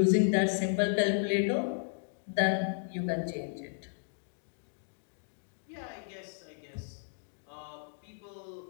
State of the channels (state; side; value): silent; right; digital silence